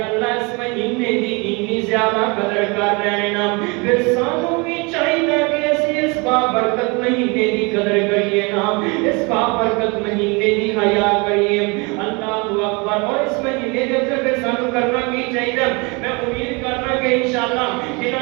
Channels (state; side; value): quieter; left; 28.8 dB